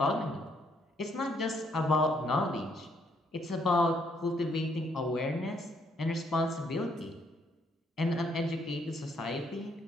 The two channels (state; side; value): normal; both; correlation 0.71